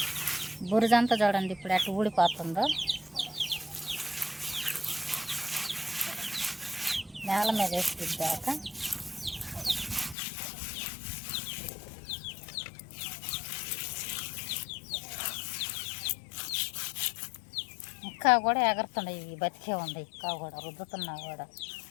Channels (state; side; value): drops out; right; at 10.2 s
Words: బురదంతా చూడండి ఇప్పుడు అటు ఊడిపోతుందో. నేల మీద వేసి రుద్దాక ఇంకా కూడా ఎగరుతున్నాయి, బతికే ఉంది ఇంకా కూడా రుద్దుతున్నా కూడా.